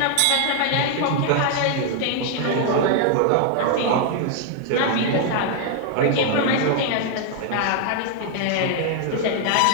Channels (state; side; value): different; both; correlation 0.00